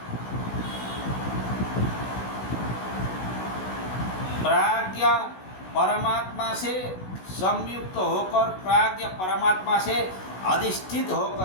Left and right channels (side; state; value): right; late; 16 ms